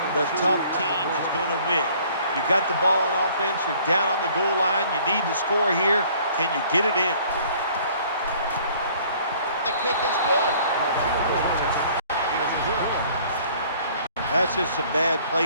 the tough team is going to win. You got the ball on offense. You're down on the goal line. You need to score here. Can you get it in? The kick is good. That's just some bad play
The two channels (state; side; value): inverted; both; correlation -0.55